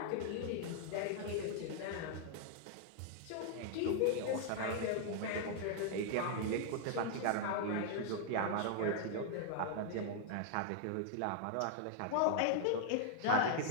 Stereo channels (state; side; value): different; both; correlation -0.01